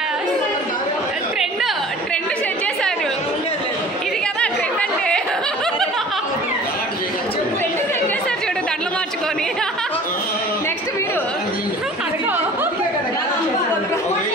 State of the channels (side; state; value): both; normal; correlation 0.45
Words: ట్రెండ్ సెట్ చేశారు. ఇది కదా ట్రెండ్ అంటే. ట్రెండ్ సెట్ చేశారు చూడు దండలు మార్చుకొని. నెక్స్ట్ మీరు అడుగు.